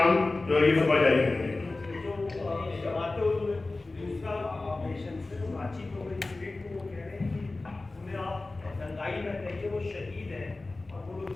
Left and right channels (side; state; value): right; quieter; 3.2 dB